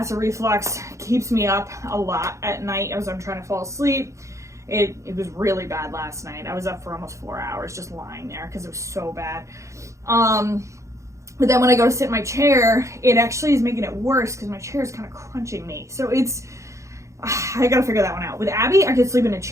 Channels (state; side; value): late; left; 0.15 ms